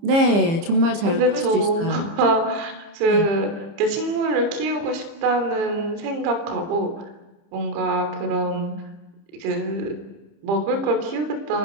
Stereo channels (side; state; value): left; late; 30 ms